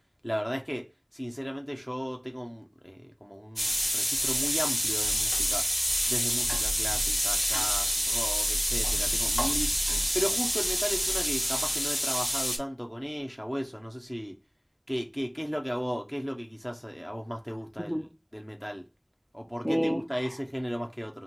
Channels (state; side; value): identical; both; correlation 1.00